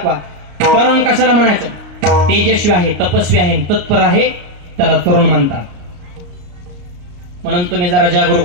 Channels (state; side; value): late; left; 34 ms